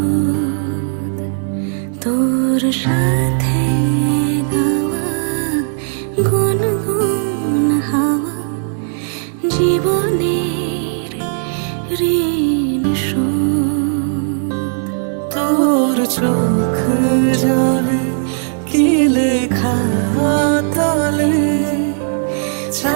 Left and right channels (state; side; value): silent; left; digital silence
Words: তোর সাথে গাওয়া গুনগুন হাওয়া জীবনের ঋণ শোধ। তোর চোখ জলে কি লেখা তলে